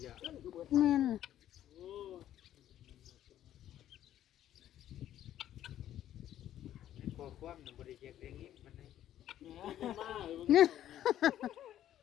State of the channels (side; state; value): right; quieter; 11.8 dB